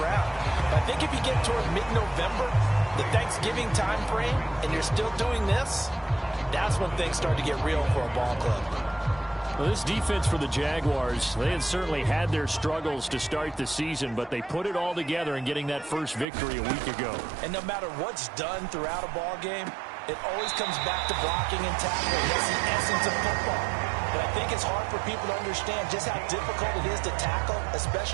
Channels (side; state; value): left; drops out; at 16.2 s